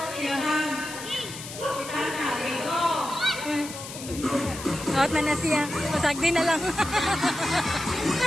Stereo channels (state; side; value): noise; left; hiss, 11 dB below the sound